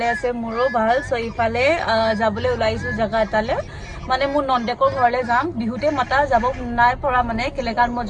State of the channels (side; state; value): both; identical; correlation 1.00